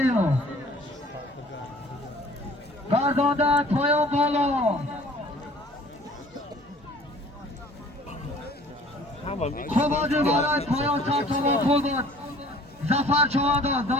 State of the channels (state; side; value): normal; both; correlation 0.51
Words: گرداندن پایان بالا خوبادی برای پایان 100 تومان پول بود زفر چهادان